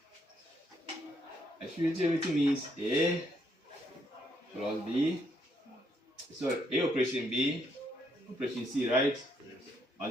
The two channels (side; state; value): both; normal; correlation 0.74